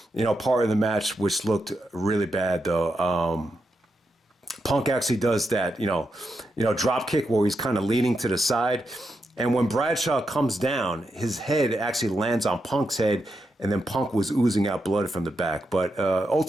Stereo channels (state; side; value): normal; both; correlation 0.85